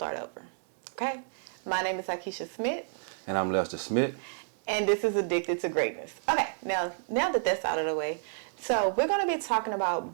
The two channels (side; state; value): left; silent; 58 dB below the other